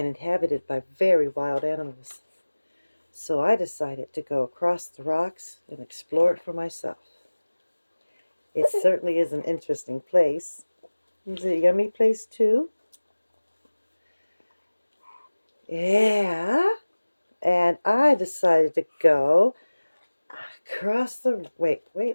inhabited by very wild animals. So I decided to go across the rocks and explore it for myself. It certainly is an interesting place. Is it a yummy place too? Yeah. And I decided to go across the... Wait,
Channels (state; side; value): inverted; both; correlation -1.00